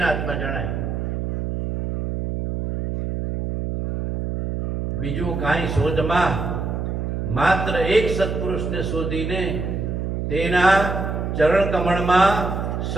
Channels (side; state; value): right; noise; hum, 3 dB below the sound